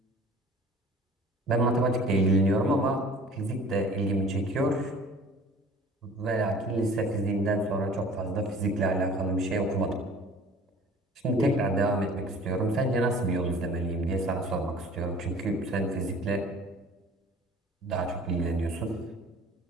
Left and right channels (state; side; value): normal; both; correlation 0.47